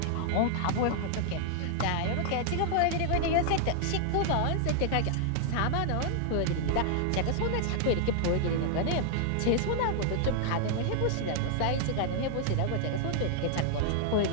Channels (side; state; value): both; different; correlation -0.01